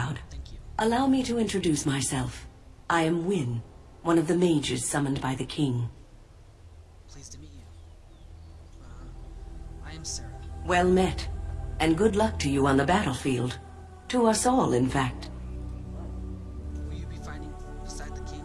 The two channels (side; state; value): both; identical; correlation 1.00